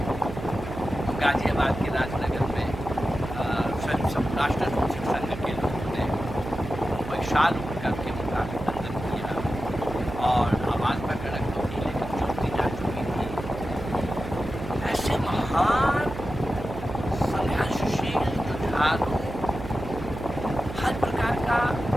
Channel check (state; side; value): noise; right; hum, 10 dB below the sound